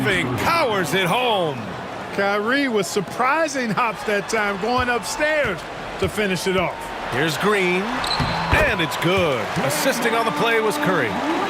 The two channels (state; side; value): identical; both; correlation 1.00